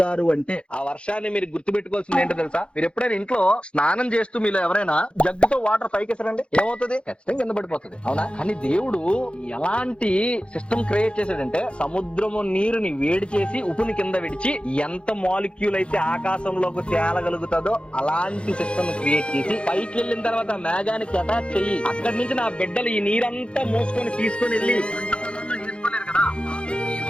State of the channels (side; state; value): right; late; 0.058 ms